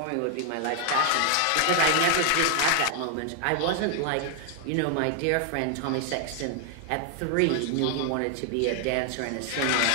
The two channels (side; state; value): both; different; correlation 0.00